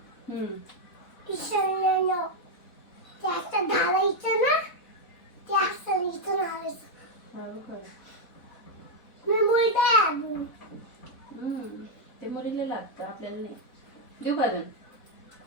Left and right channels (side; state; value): right; late; 4.1 ms